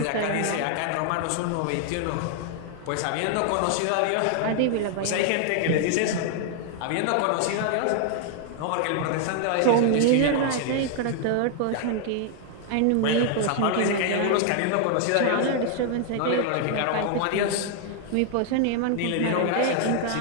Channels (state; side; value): different; both; correlation 0.00